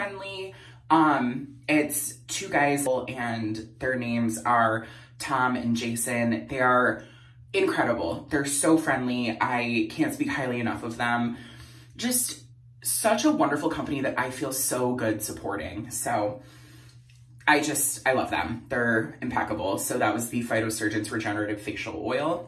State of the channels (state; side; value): identical; both; correlation 1.00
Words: It's 2 guys and their names are Tom and Jason. They are incredible. They're so friendly. I can't speak highly enough of them. Just such a wonderful company that I feel so good supporting. So I love them. They're impeccable. So that was the Phytosurgeons Regenerative Facial